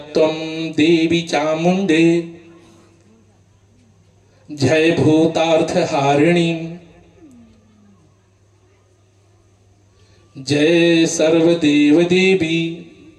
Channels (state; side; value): identical; both; correlation 1.00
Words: देवी चामुंडे जय भूतार्थ हारिणी जय सर्वदेव देवी